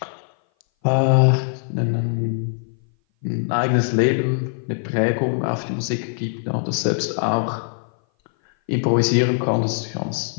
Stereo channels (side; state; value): right; silent; 58 dB below the other